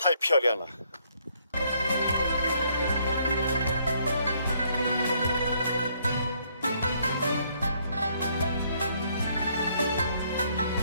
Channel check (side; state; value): both; inverted; correlation -0.68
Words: 漂亮了。